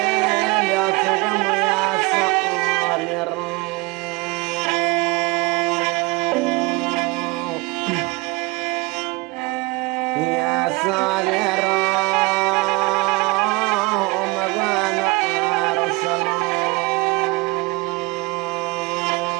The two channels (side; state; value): left; quieter; 24.2 dB